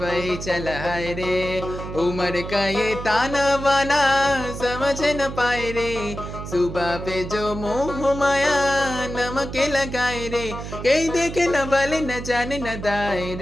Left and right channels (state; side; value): noise; right; hum, 9 dB below the sound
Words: चला है रे। उम्र का ये ताना बाना समझ न पाए रे, सुबह पे जो मोह माया नमक लगाए रे। कहीं देखे न बले न जाने न दाए